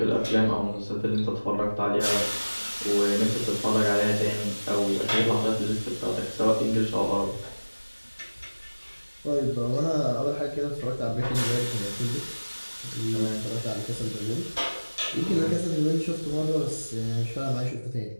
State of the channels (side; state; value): both; inverted; correlation -1.00